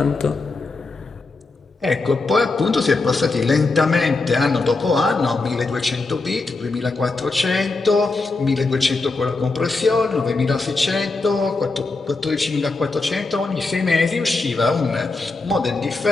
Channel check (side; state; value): right; quieter; 3.6 dB